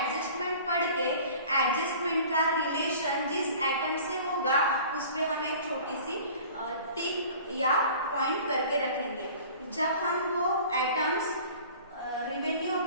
पढ़ के एडजस्टमेंट का रिलेशन जिस एटम से होगा उस पे हम एक छोटी सी टिक या पॉइंट करके रखेंगे। जब हम वो एटम्स रिवेन्यू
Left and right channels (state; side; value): inverted; both; correlation -0.45